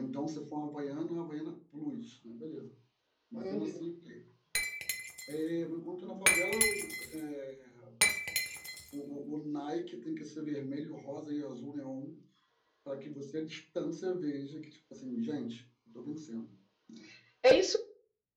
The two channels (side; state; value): both; identical; correlation 1.00